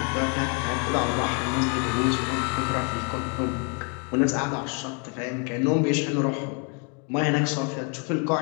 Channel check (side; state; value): right; quieter; 37.7 dB